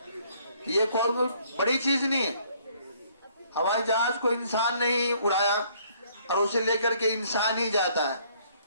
یہ کوئی بڑی چیز نہیں ہے، ہوائی جہاز کو انسان نہیں اڑایا اور اسے لے کر کے انسان ہی جاتا ہے۔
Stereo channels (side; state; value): both; inverted; correlation -0.63